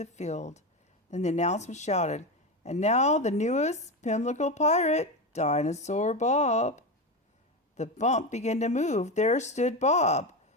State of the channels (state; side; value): normal; both; correlation 0.17